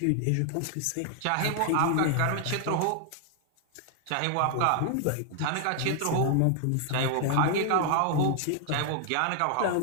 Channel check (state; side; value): different; both; correlation 0.00